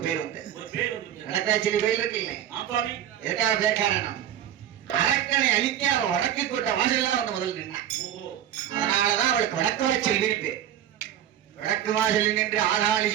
பேர் வந்து வடக்காய்ச்செல்வி கோயில் இருக்கு இல்லை? எதுக்காக பேர் காரணம்? அரக்கனை அழிக்க அவள் வடக்கு கோட்டை வாசல்லாம் வந்து முதல் நின்னான். அதனாலதான் அவளுக்கு வடக்குவாய் செல்வின்னு பேர். வடக்கு வாசலில் நின்று ஆளாளி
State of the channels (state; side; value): quieter; left; 10.9 dB